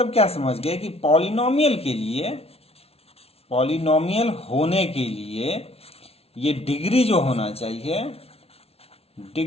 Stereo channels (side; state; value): right; late; 0.30 ms